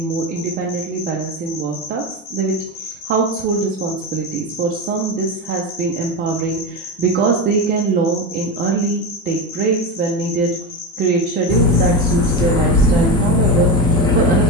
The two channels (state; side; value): normal; both; correlation 0.18